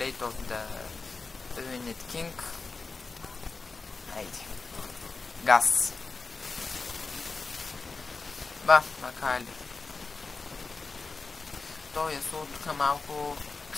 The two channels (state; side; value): quieter; right; 4.1 dB